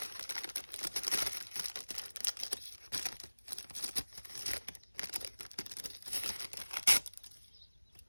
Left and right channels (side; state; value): both; inverted; correlation -1.00